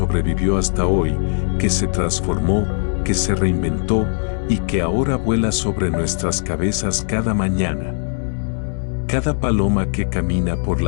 hasta hoy, que se transformó, que se reinventó y que ahora vuela sobre nuestras cabezas cada mañana. Cada paloma que camina por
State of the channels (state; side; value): silent; right; 64 dB below the other